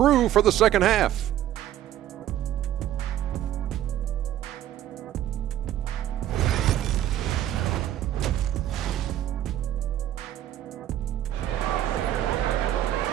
for the second half.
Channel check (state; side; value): quieter; left; 12.2 dB